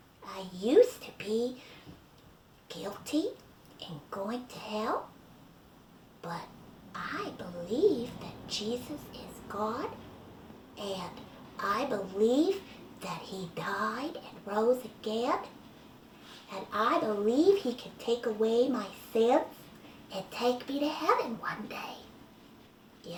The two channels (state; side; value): identical; both; correlation 1.00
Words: I used to be guilty and going to hell, but I believe that Jesus is God, and I believe that he died and rose again, and I believe he can take away my sins and take me to heaven one day.